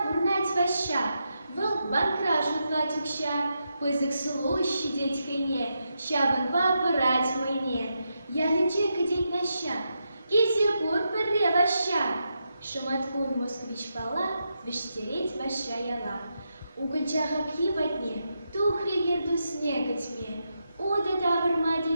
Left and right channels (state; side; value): inverted; both; correlation -0.84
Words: пурнать ваща, выл банкра жутлать укща, пызык сулу щадеть хайне, щабан папырать мойне. Я лече кадеть наща, кизе пур пырре ваща. Шаматкун москвич пала, вештереть ваща яла. Угольчаха пьибатне, тухри герду снега тьме, ода тавр